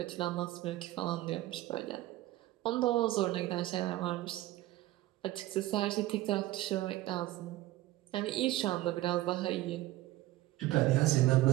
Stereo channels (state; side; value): quieter; left; 16.4 dB